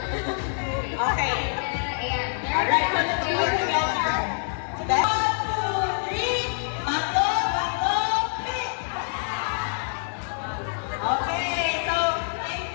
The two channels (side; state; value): right; silent; digital silence